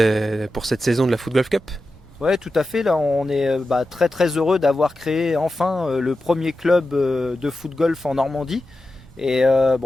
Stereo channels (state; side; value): normal; both; correlation 0.92